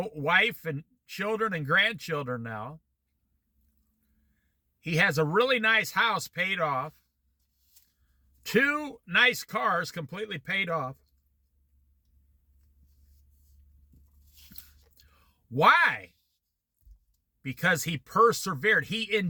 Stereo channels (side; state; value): both; identical; correlation 1.00